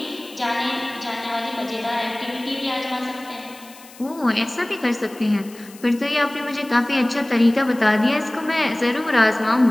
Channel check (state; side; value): noise; left; hiss, 21 dB below the sound